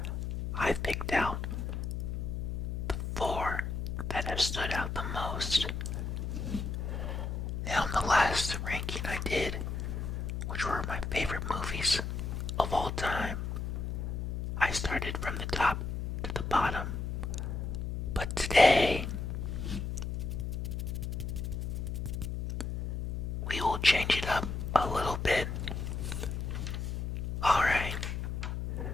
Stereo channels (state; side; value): noise; left; hum, 3 dB below the sound